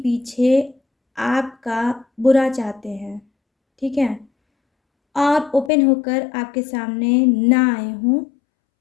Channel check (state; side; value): drops out; right; at 5.7 s